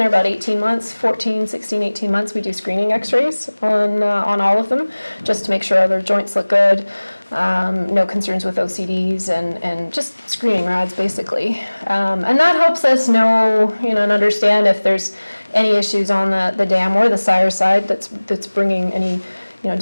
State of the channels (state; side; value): inverted; both; correlation -1.00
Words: about 18 months, 14, 16, 18 months, we do screening x-rays on all of them, just to make sure their joints look good, no concerns with OCDs, and just screening rads, basically. And that helps us know, and understand if there's any issues on the dam or the sire side that's bringing any,